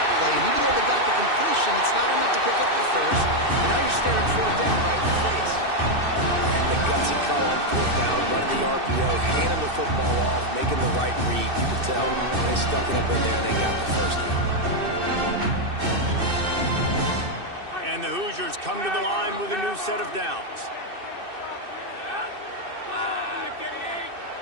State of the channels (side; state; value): left; late; 2.6 ms